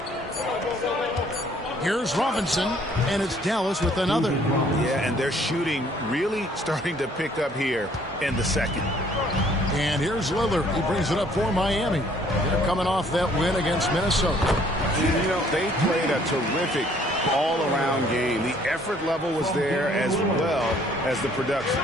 Here's Robinson, and it's Dallas with another. Yeah, and their shooting really starting to pick up here in the second. And here's Lillard. He brings it up for Miami. They're coming off that win against Minnesota. You know, they played a terrific all-around game. The effort level was there as well as the production.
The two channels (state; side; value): normal; both; correlation 0.60